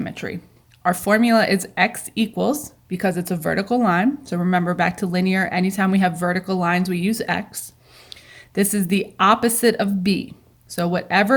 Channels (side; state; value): both; identical; correlation 1.00